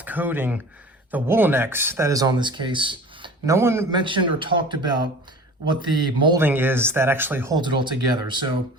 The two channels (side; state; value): both; normal; correlation 0.41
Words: coating, the Woolenex that is on this case, no one mentioned or talked about what the molding is that actually holds it all together. So